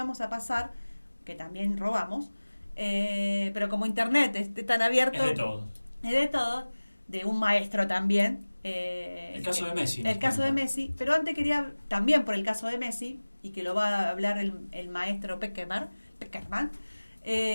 a pasar, que también robamos, pero como internet es tan abierto... Es de todo. Es de todo, de un maestro también. El caso de Messi. El caso de Messi, pero antes quería, también por el caso de Messi, y que lo va a hablar el maestro Peckerman, que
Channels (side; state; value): both; inverted; correlation -1.00